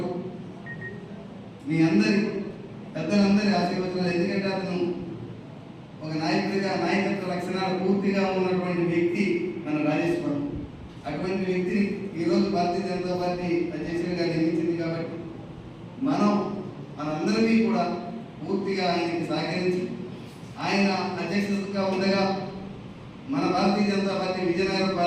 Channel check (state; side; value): identical; both; correlation 1.00